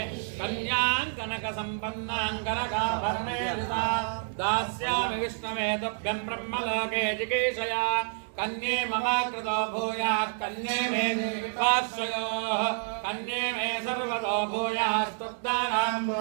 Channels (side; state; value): left; silent; digital silence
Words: కన్యాం కనక సంపన్నాం కనకాభరణేన దాస్యామి విష్ణవే తుభ్యం బ్రహ్మలోకే జిగీషయా కన్యే మమ కృతో భూయాత్ కన్యే మే పార్శ్వయోః కన్యే మే సర్వతో భూయాస్తుబ్దానాం